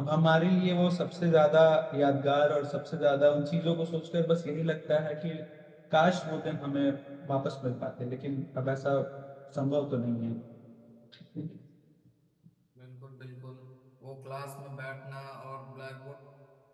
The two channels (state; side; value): identical; both; correlation 1.00